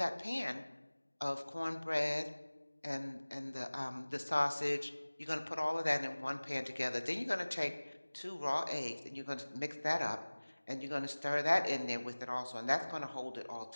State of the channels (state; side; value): inverted; both; correlation -1.00